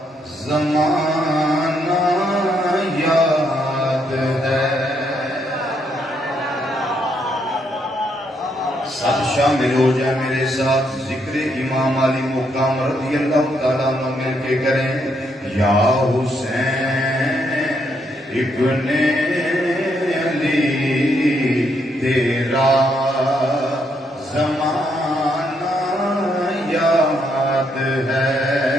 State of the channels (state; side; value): normal; both; correlation 0.75